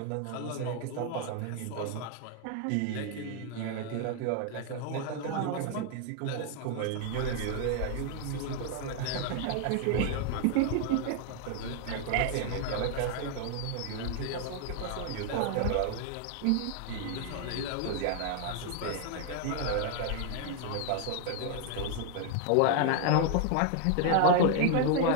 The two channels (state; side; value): different; both; correlation 0.00